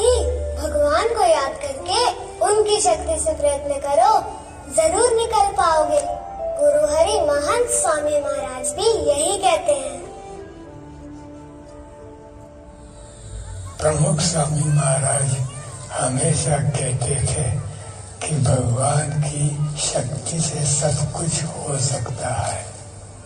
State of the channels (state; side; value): identical; both; correlation 1.00